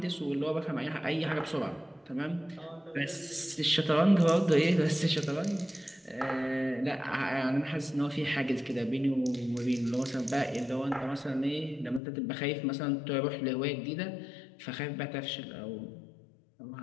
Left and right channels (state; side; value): drops out; right; at 12.0 s